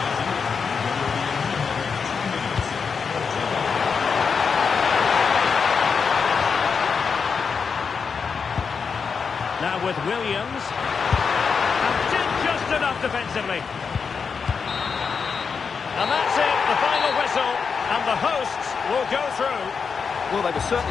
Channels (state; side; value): quieter; right; 5.7 dB